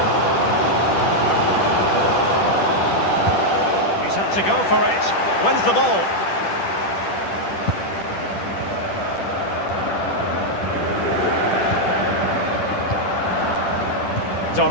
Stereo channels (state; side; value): late; right; 10 ms